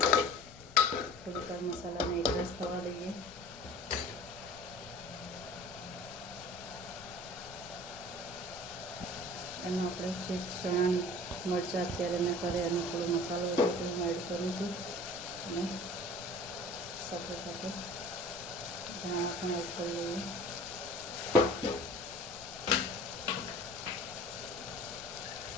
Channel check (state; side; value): noise; left; rumble, 20 dB below the sound